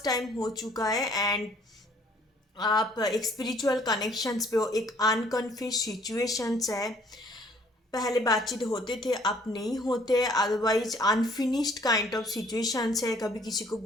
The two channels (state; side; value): normal; both; correlation 0.60